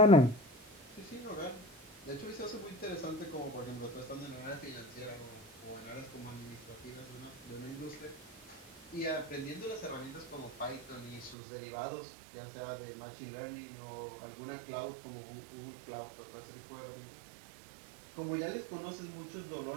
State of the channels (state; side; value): drops out; left; at 11.4 s